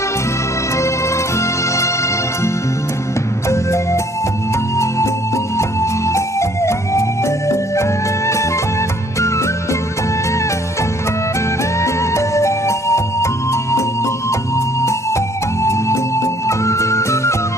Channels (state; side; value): normal; both; correlation 0.61